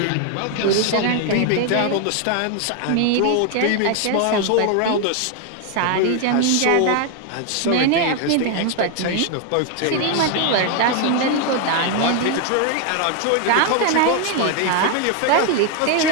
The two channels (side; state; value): both; different; correlation 0.01